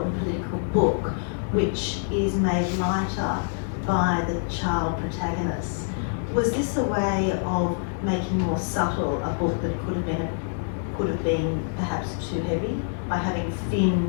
political book which is made lighter by the child protagonist. Was this a way of making more subtle a book that could have been perhaps too heavy by having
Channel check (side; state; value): right; silent; digital silence